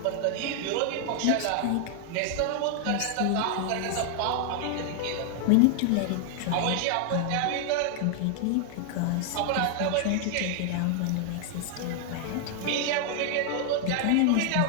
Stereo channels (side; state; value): both; different; correlation 0.00